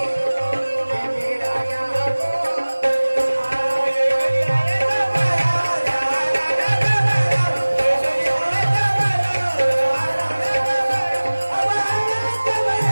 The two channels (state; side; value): inverted; both; correlation -1.00